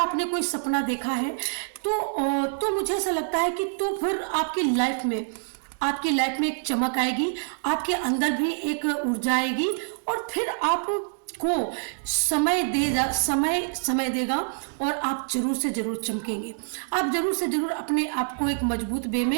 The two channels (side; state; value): left; silent; digital silence